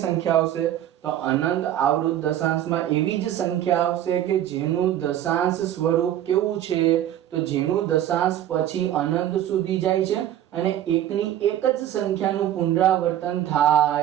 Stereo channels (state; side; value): quieter; left; 11.8 dB